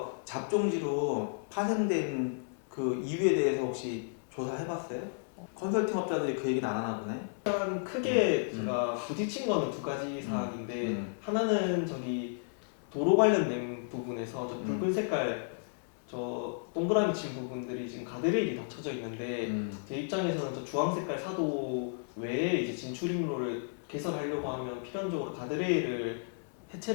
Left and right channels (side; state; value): right; silent; digital silence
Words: 잡종지로 파생된 그 이유에 대해서 혹시 조사해봤어요? 컨설팅 업자들이 그 얘기는 안 하나 보네. 일단 크게 제가 부딪힌 거는 두 가지 사항인데 하나는 도로 관련된 부분에서 저 붉은 색깔 저 동그라미 친 부분들이 지금 가드레일이 닫혀져 있는데 제 입장에서는 저 주황 색깔 사도 외에 이제 진출입로를 개설하려고 하면 필연적으로 가드레일을